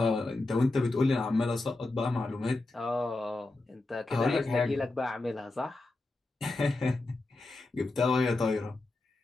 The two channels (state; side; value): quieter; right; 3.1 dB